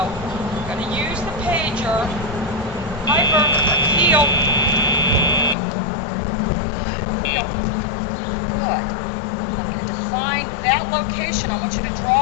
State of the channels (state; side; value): drops out; right; at 5.6 s